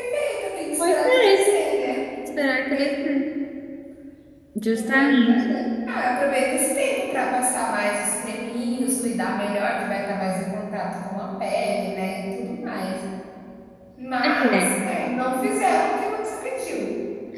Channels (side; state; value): both; identical; correlation 1.00